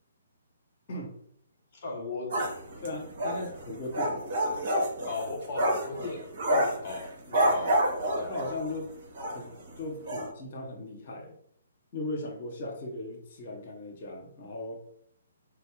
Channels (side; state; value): both; inverted; correlation -0.59